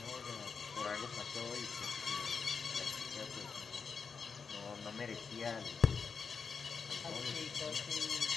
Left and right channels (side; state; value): right; quieter; 5.6 dB